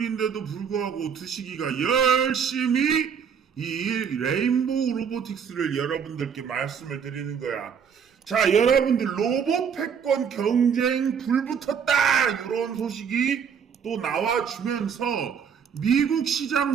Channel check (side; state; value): left; quieter; 7.1 dB